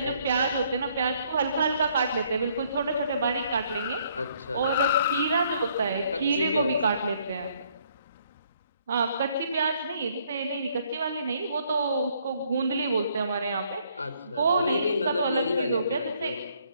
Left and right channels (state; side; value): inverted; both; correlation -0.67